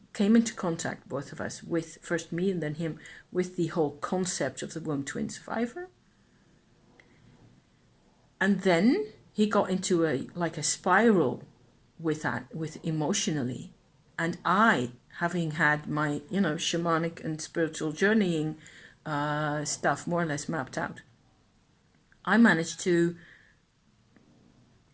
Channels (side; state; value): both; identical; correlation 1.00